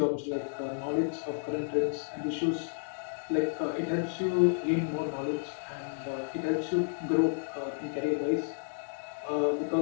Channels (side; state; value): right; silent; digital silence